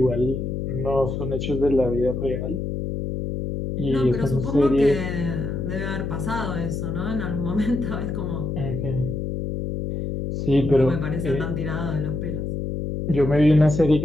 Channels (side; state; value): left; noise; hum, 3 dB below the sound